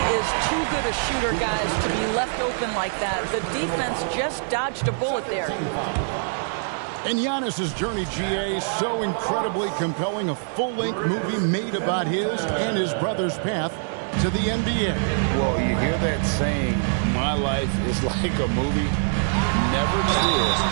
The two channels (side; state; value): left; silent; 63 dB below the other